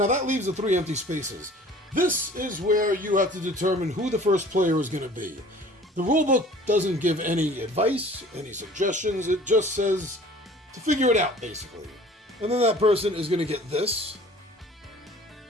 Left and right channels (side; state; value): both; normal; correlation 0.49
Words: that leaves the 3 empty spaces. This is where you have to determine who the first player is going to be. The rulebook doesn't give any advice, any suggestions. It just says to figure it out, basically. And then that person is going to get this.